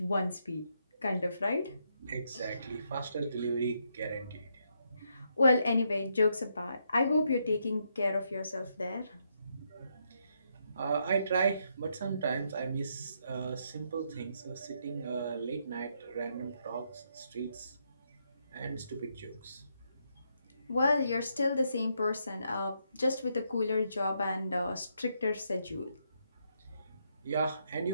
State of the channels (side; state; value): both; inverted; correlation -0.78